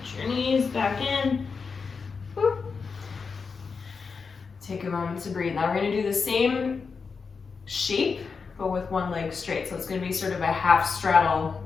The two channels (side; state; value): right; quieter; 5.2 dB